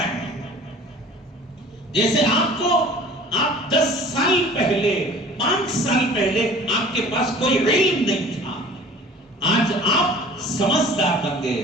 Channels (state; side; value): normal; both; correlation 0.46